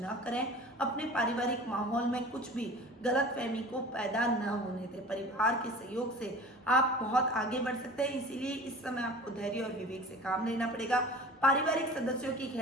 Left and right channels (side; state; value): both; normal; correlation 0.40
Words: करें। अपने पारिवारिक माहौल में कुछ भी गलतफहमी को पैदा न होने दें। परिवार के सहयोग से आप बहुत आगे बढ़ सकते हैं, इसीलिए इस समय आपको धैर्य और विवेक से काम लेना पड़ेगा। पारिवारिक सदस्यों की